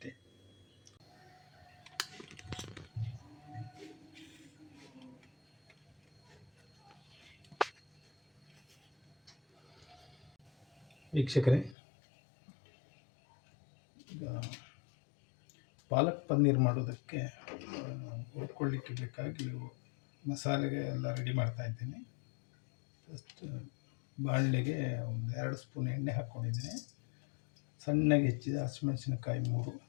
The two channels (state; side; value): drops out; right; at 11.8 s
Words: ವೀಕ್ಷಕರೇ, ಈಗ ಪಾಲಕ್ ಪನ್ನೀರ್ ಮಾಡೋದಕ್ಕೆ ಹುರ್ಕೊಳ್ಳಿಕ್ಕೆ ಬೇಕಾಗಿ ಮಸಾಲೆಗೆ ಎಲ್ಲ ರೆಡಿ ಮಾಡ್ತಾ ಇದ್ದೀನಿ. ಫಸ್ಟ್ ಬಾಣಲೆಗೆ ಒಂದು 2 ಸ್ಪೂನ್ ಎಣ್ಣೆ ಹಾಕ್ಕೊಂಡಿದ್ದೀನಿ. ಸಣ್ಣಗೆ ಹೆಚ್ಚಿದ ಹಸಿಮೆಣಸಿನಕಾಯಿ 3,